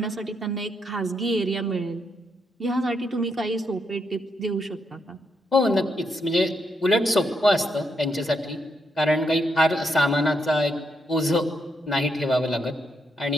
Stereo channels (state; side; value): normal; both; correlation 0.79